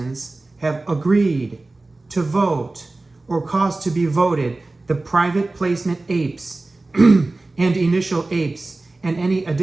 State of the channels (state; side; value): quieter; left; 3.1 dB